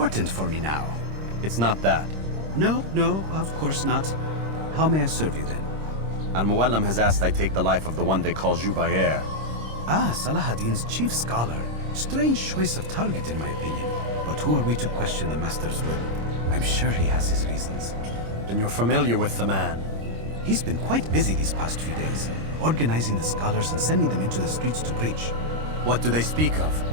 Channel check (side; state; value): left; late; 26 ms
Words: for me now. It's not that. No, of course not. How may I serve you then? Al-Muallim has asked I take the life of the one they call Jubair. Ah, Salahadin's chief scholar. Strange choice of target in my opinion. But who are we to question the master's will? I'm sure he has his reasons. Then you're familiar with the man. He's been quite busy these past few days, organizing the scholars and sending them into the streets to preach. What do they speak